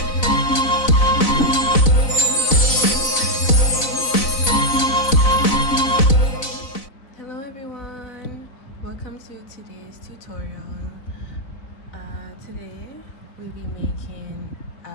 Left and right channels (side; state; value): right; late; 4.0 ms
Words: Hello everyone, welcome to today's tutorial. Today we'll be making